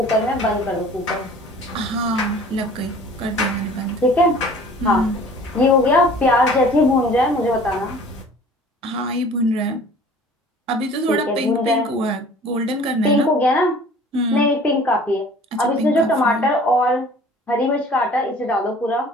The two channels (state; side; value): normal; both; correlation 0.48